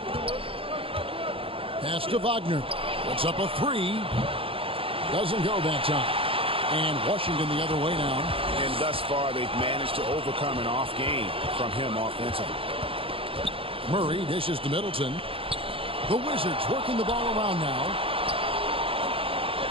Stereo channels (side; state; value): left; late; 0.27 ms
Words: Pass to Wagner. Puts up a 3. Doesn't go that time. And Washington the other way now. And thus far, they've managed to overcome an off game from him offensively. Murray dishes to Middleton. The Wizards working the ball around now.